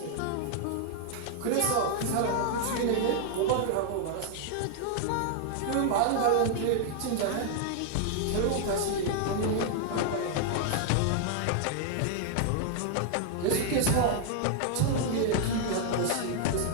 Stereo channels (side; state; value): both; different; correlation 0.00